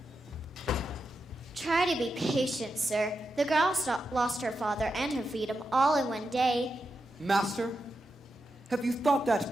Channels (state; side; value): normal; both; correlation 0.87